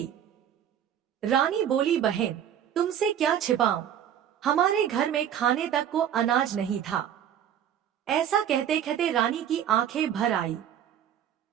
रानी बोली, बहन तुमसे क्या छिपाऊं, हमारे घर में खाने तक को अनाज नहीं था। ऐसा कहते कहते रानी की आंखें भर आई।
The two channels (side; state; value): left; quieter; 9.7 dB